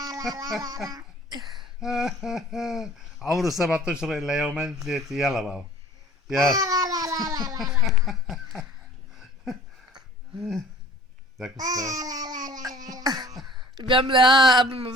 عمره 7 اشهر الا يومين ثلاثة يلا بابا يلا ذاك بيعمل ايه قبل ما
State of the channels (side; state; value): both; normal; correlation 0.49